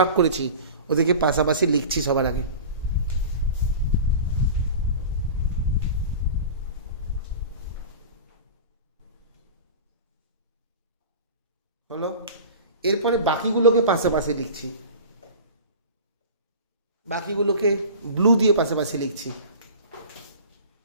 করেছি ওদেরকে পাশাপাশি লিখছি সবার আগে। হলো? এরপরে বাকিগুলোকে পাশাপাশি লিখছি। বাকিগুলোকে ব্লু দিয়ে পাশাপাশি লিখছি।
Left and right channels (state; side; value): inverted; both; correlation -0.36